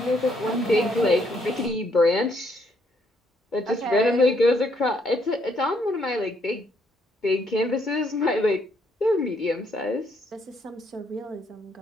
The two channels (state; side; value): normal; both; correlation 0.71